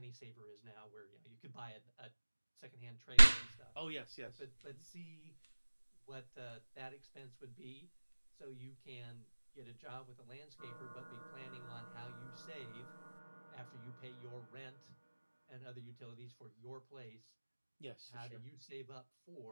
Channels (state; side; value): inverted; both; correlation -1.00